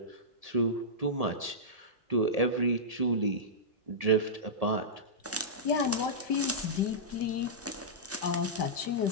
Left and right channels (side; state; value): both; normal; correlation -0.14